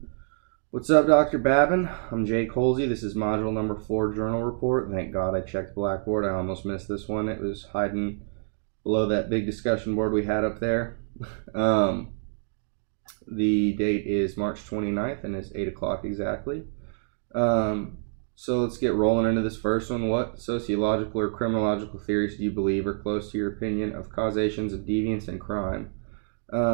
What's up, Dr. Babin? I'm Jake Holsey. This is module number 4 journal report. Thank God I checked Blackboard. I almost missed this one. It was hiding below that big discussion board we had up there. The date is March 29th and it's 8 o'clock exactly. So let's get rolling into this first one. What sociological or criminological theories do you believe are close to your opinion of causations of deviance and crime?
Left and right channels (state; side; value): silent; left; digital silence